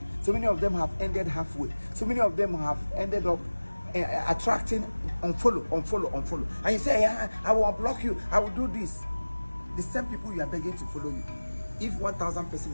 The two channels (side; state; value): both; inverted; correlation -1.00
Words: So many of them have ended halfway. So many of them have ended up attracting unfollow. And you say, yeah, I will unblock you. I will do this. The same people you are begging to follow you. If 1,000 person